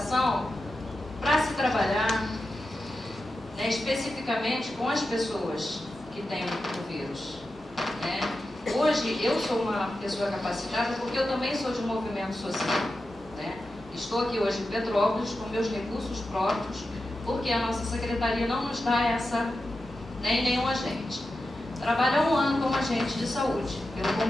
para se trabalhar, né, especificamente com as pessoas que têm o vírus, né? Hoje, eu sou uma pessoa capacitada porque eu também sou de um movimento social, né? Estou aqui hoje em Petrópolis com meus recursos próprios, porque a nossa secretaria não nos dá essa, nem nenhum agente. Trabalho há 1 ano como agente de saúde, pelo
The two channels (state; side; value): normal; both; correlation 0.91